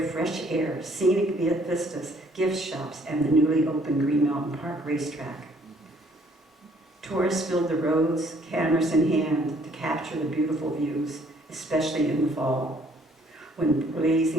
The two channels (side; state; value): both; normal; correlation 0.62